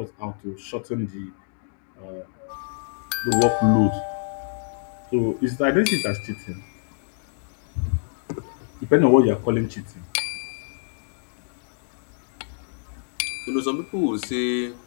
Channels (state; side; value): silent; right; digital silence